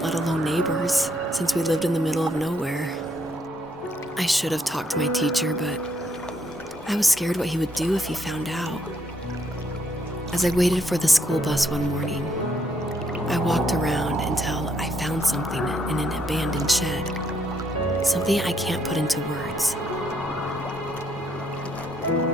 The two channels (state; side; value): normal; both; correlation 0.72